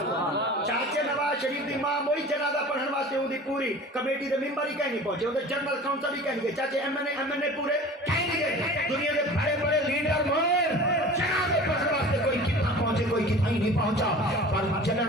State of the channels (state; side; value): normal; both; correlation 0.40